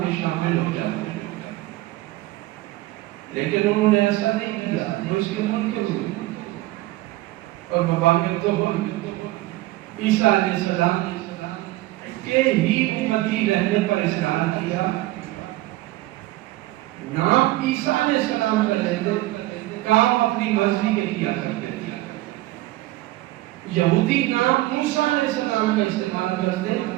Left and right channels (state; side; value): quieter; left; 17.7 dB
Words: میں شامل ہو جاتے، لیکن انہوں نے ایسا نہیں کیا، وہ اس کے منکر ہوئے اور مباغت تو ہوئی۔ عیسیٰ علیہ السلام کے ہی امتی رہنے پر اصرار کیا، نام عیسیٰ علیہ السلام کا لیتے، کام اپنی مرضی کے کیا کرتے تھے۔ یہودی نام موسیٰ علیہ السلام کا استعمال کرتے،